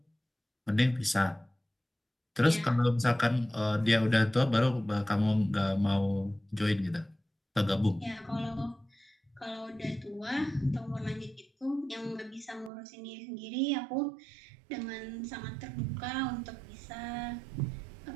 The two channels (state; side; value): drops out; left; at 12.7 s